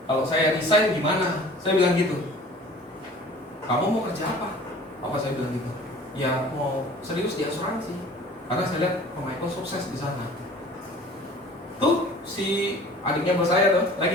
kalau saya resign gimana? Saya bilang gitu. Kamu mau kerja apa? Papa saya bilang gitu. Ya mau serius di asuransi. Karena saya lihat Pak Michael sukses di sana. Tuh si adiknya bos saya tuh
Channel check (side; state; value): both; normal; correlation 0.46